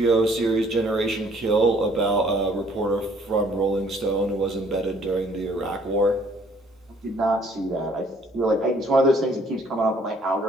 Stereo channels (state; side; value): normal; both; correlation 0.60